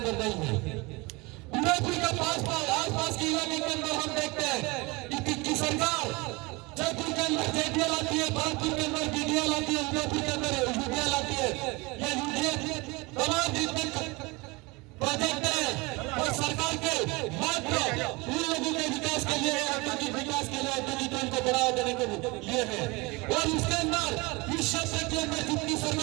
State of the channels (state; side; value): quieter; left; 25.2 dB